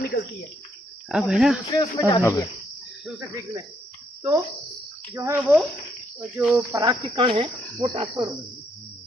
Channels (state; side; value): normal; both; correlation 0.73